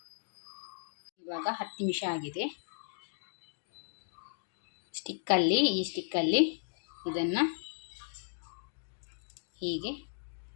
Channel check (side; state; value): right; silent; digital silence